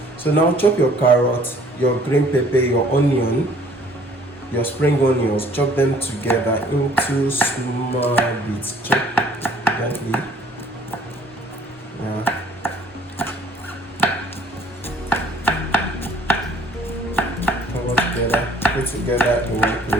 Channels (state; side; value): normal; both; correlation 0.56